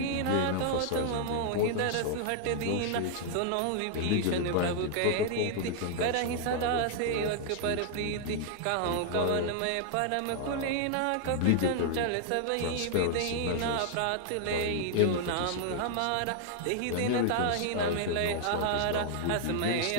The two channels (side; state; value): both; different; correlation 0.00